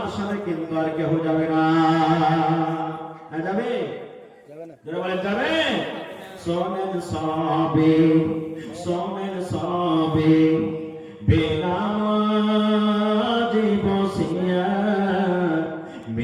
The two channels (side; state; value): both; identical; correlation 1.00